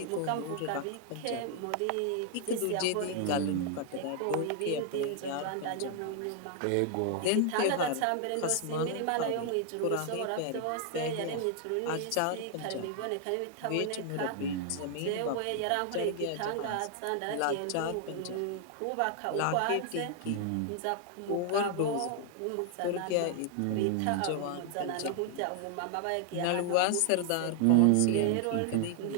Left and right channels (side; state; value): both; different; correlation 0.00